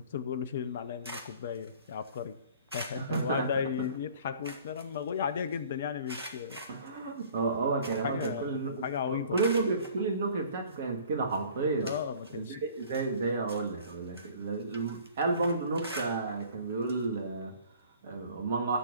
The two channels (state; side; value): inverted; both; correlation -0.50